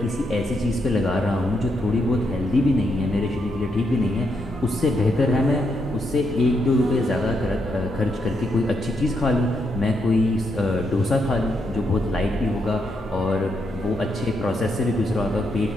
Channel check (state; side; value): normal; both; correlation 0.80